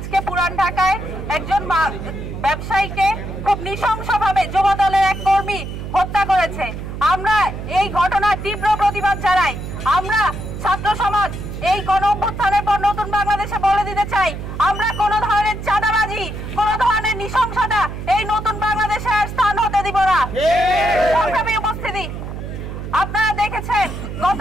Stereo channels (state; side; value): noise; right; hum, 8 dB below the sound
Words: পুরান ঢাকায় একজন ব্যবসায়ীকে খুব নৃশংসভাবে যুবদলের এক কর্মী হত্যা করেছে। আমরা এই ঘটনার তীব্র প্রতিবাদ জানাই। আমরা ছাত্র সমাজ এই গণ অভ্যুত্থানের পর নতুন বাংলাদেশে বলে দিতে চাই, আমরা কোনো ধরনের চাঁদাবাজি, কোনো ধরনের নৃশংসতা এই নতুন বাংলাদেশে আর স্থান হতে দিব না। সংগ্রামী উপস্থিতি, আপনারা দেখেছেন গত